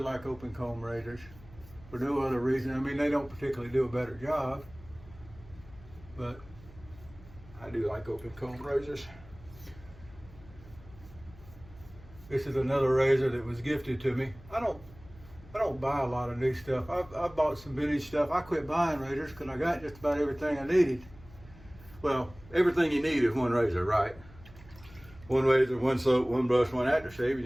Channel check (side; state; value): left; noise; hum, 21 dB below the sound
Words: like open comb razors for no other reason. I mean, they don't particularly do a better job, but I do like open comb razors. This is another razor that was gifted to me. I don't buy a lot of new stuff. I bought some vintage stuff. I quit buying razors because I got just about everything I needed. Well, everything you need is one razor, right? One razor, one soap, one brush, one aftershave, and